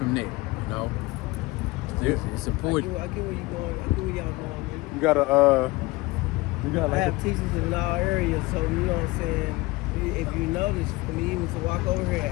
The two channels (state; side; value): quieter; right; 21.8 dB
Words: that. It's important. I get where you going. I get where y'all going. You gotta I have teachers in all areas, so you know what I'm saying. If you notice, for me even to walk over here and